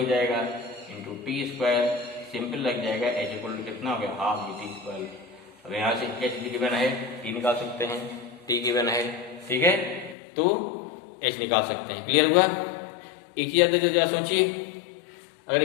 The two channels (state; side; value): drops out; right; at 10.2 s